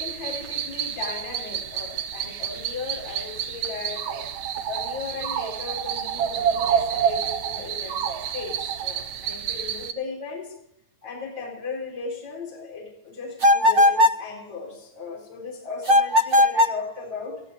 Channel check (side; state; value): left; late; 9.1 ms